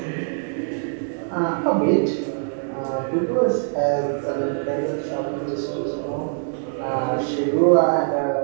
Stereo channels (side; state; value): left; silent; digital silence